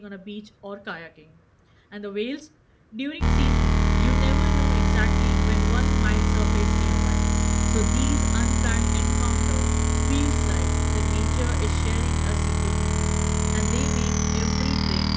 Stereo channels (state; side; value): identical; both; correlation 1.00